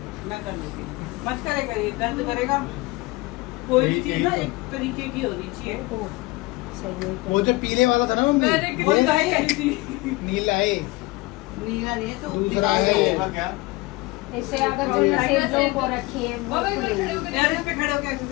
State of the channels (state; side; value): quieter; right; 21.9 dB